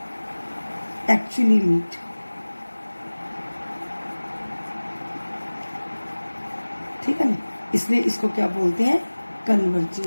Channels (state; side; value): inverted; both; correlation -1.00